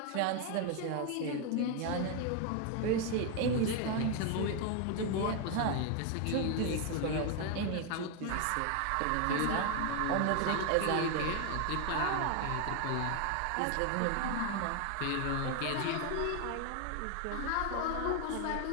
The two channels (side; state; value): both; different; correlation 0.01